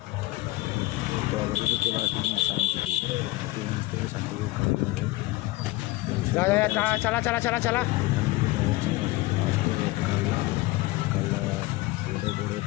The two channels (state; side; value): quieter; right; 19.7 dB